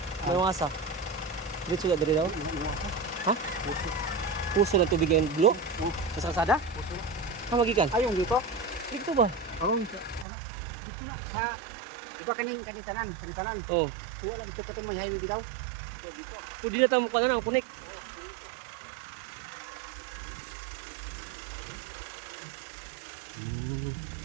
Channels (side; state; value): left; drops out; at 10.2 s